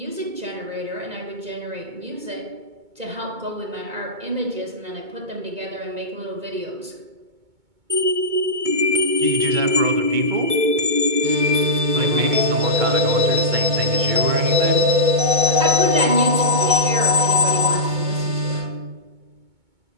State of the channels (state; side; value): late; left; 2.2 ms